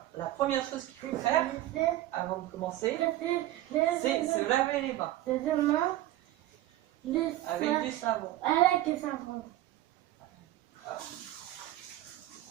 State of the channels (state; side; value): quieter; left; 14.9 dB